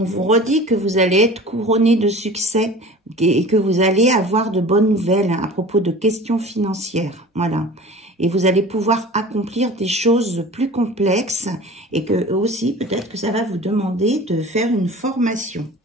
vous redit que vous allez être couronné de succès et que vous allez avoir de bonnes nouvelles à propos de questions financières. Voilà. Et vous allez pouvoir accomplir des choses plus complexes et que aussi, peut-être que ça va vous demander de faire une formation.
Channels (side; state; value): both; normal; correlation 0.40